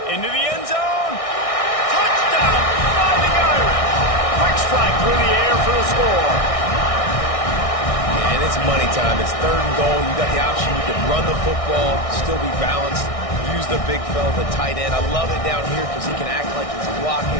Into the end zone. Touchdown, finding Irish. Quick strike through the air for the score. And it's money time. It's third and goal. You got the option. You can run the football, still be balanced, use the big fella, the tight end. I love it down here because he can act like he's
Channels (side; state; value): right; late; 1.6 ms